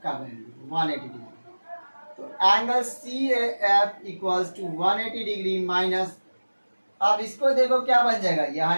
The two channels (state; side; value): inverted; both; correlation -1.00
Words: का वैल्यू 180 डिग्री। तो angle C A F equals to 180 degree minus, अब इसको देखो क्या बन जाएगा, ये